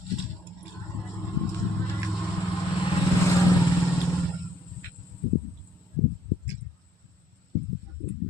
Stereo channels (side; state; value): both; normal; correlation 0.67